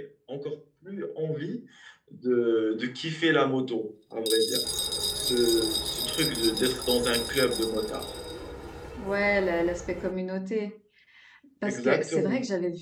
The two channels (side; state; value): both; identical; correlation 1.00